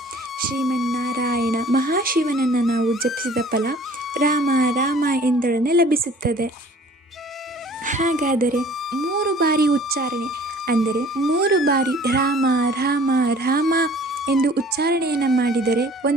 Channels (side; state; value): both; normal; correlation 0.51